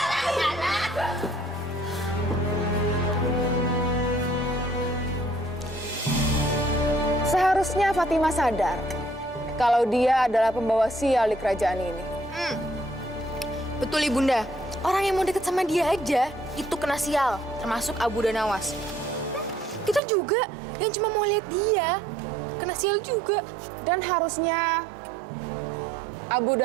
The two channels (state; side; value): drops out; left; at 20.0 s